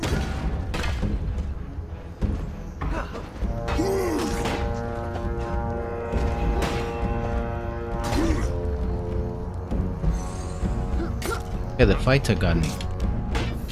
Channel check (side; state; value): both; identical; correlation 1.00